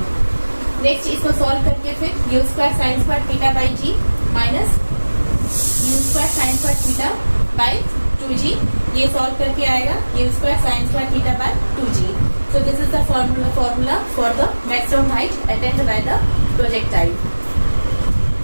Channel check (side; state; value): both; inverted; correlation -1.00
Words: Next इसको सॉल्व करके फिर U square sine square theta by G minus you square sine square theta by 2g, ये सॉल्व करके आएगा U square sine square theta by 2g। So this is the formula for the maximum height attained by the projectile.